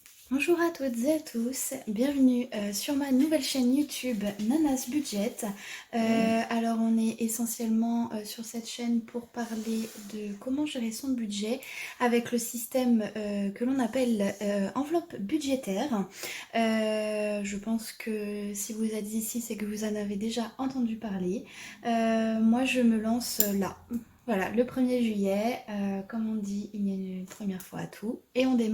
Bonjour à toutes et à tous, bienvenue sur ma nouvelle chaîne YouTube Nanas Budget. Alors on est essentiellement sur cette chaîne pour parler de comment gérer son budget avec le système que l'on appelle enveloppe budgétaire. Je pense que si vous êtes ici, c'est que vous en avez déjà entendu parler. Moi je me lance là. Voilà, le 1er juillet, comme on dit, il y a une première fois à tout et on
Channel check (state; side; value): identical; both; correlation 1.00